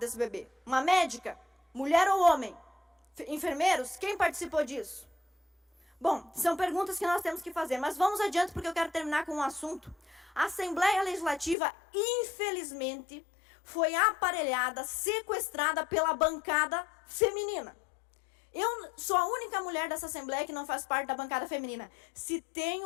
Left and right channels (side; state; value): right; drops out; at 11.6 s